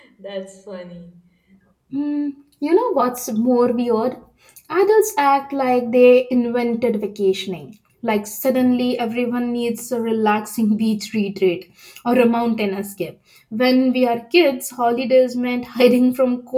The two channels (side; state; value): both; identical; correlation 1.00